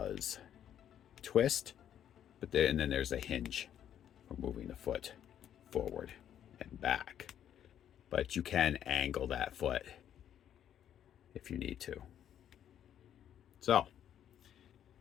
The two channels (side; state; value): right; quieter; 10.0 dB